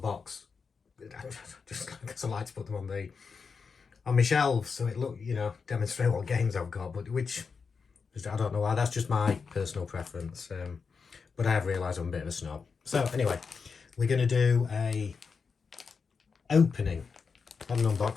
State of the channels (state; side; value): quieter; right; 5.4 dB